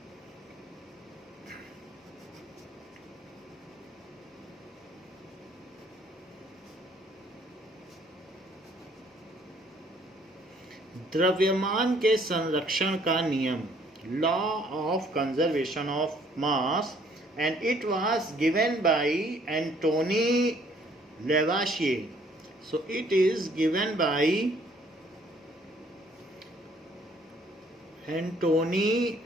द्रव्यमान के संरक्षण का नियम, law of conservation of mass, and it was given by Antony Lavoisier. So it is given by Antony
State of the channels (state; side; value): normal; both; correlation 0.62